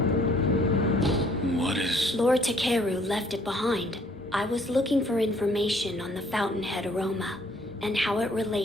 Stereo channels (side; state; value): both; normal; correlation 0.61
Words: What is... Lord Takeru left it behind. I was looking for information on the fountainhead aroma and how it